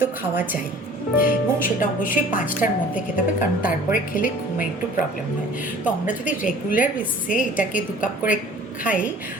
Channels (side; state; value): both; normal; correlation 0.49